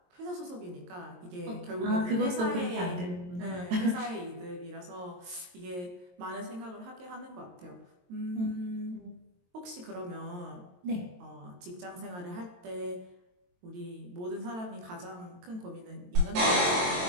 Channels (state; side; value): late; left; 22 ms